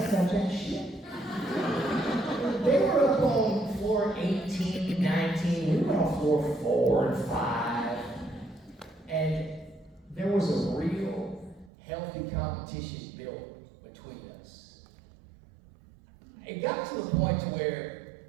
got that shit. They were up on floor 18, 19, we were on floor 4 and 5, and there was a real healthy competition built between us. It got to the point to where,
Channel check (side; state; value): left; drops out; at 11.7 s